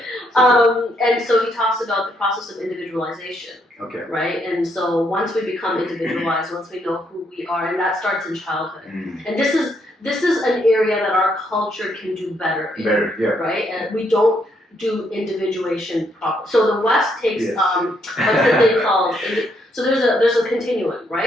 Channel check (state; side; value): normal; both; correlation 0.74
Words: And so he talks about the process of individualization. Okay. Right, and so once we become individualized, once we know who we are, and that starts in childhood, and this is an area that our culture can do better in, right? And we don't do individuation properly. So the West takes what's the thing called? So there's a continuum,